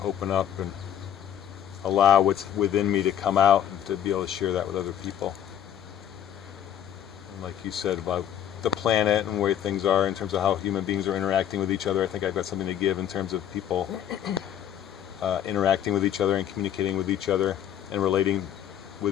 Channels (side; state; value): right; quieter; 10.2 dB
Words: open up and allow what's within me to come out and to be able to share that with other people. And like you said about the planet and where things are in terms of how human beings are interacting with each other, I think I've got something to give in terms of people interacting with each other and communicating with each other and relating